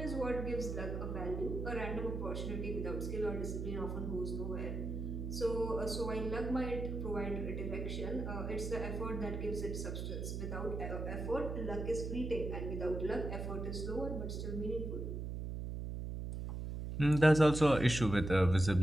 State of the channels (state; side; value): noise; right; hum, 4 dB below the sound